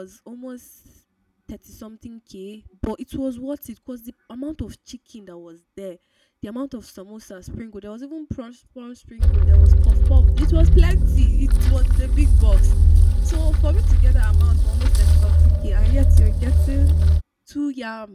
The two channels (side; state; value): both; identical; correlation 1.00